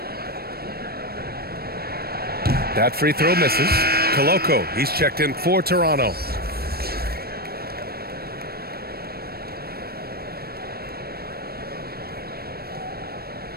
That free throw misses. Koloko, he's checked in for Toronto.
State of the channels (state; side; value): late; left; 0.45 ms